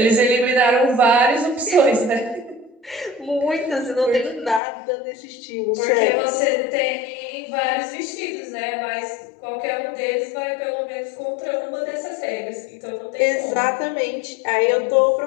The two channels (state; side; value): drops out; right; at 4.6 s